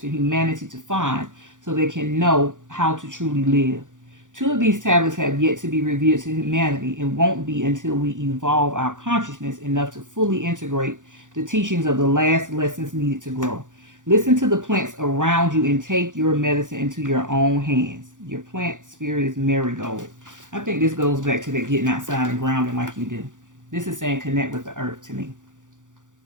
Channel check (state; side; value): late; left; 0.87 ms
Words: humanity to find so they can know how to truly live. 2 of these tablets have yet to be revealed to humanity and won't be until we evolve our consciousness enough to fully integrate the teachings of the last lessons needed to grow. Listen to the plants around you and take your medicine into your own hands. Your plant spirit is marigold. I think this goes back to that getting outside and grounding like you do. This is saying connect with the earth to me.